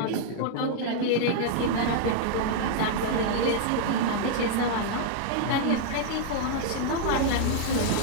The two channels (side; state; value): both; different; correlation -0.01